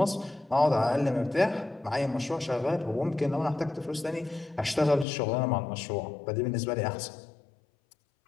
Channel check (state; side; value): drops out; right; at 5.1 s